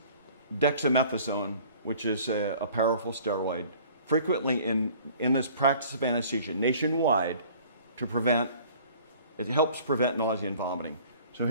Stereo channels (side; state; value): both; inverted; correlation -0.51